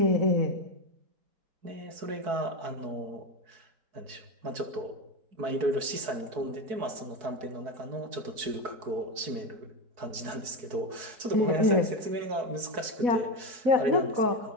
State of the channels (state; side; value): late; left; 4.6 ms